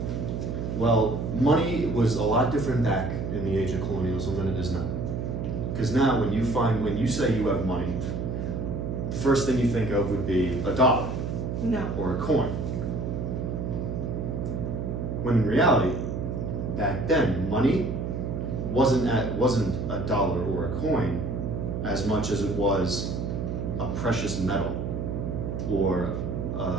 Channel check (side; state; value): right; noise; hum, 3 dB below the sound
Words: Well, money was a lot different back in the age of colonialism than it is now. Because now when you say you have money, the first thing you think of would be a dollar No. or a coin. When in reality, back then, money wasn't a dollar or a coin as much as it was a precious metal or